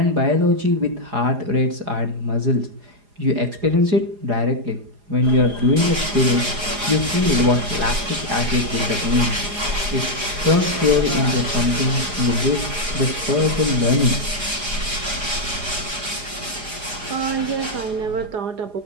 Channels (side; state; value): left; late; 4.9 ms